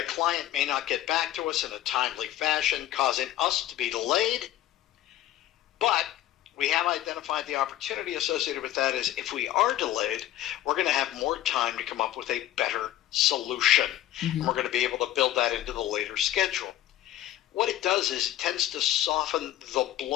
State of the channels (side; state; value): right; quieter; 13.1 dB